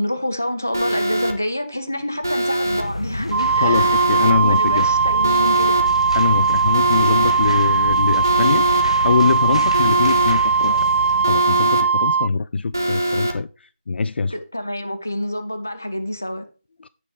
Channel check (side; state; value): both; inverted; correlation -0.58